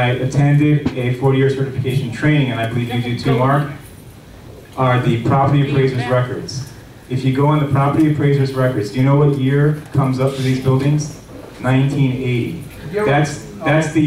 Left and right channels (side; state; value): both; identical; correlation 1.00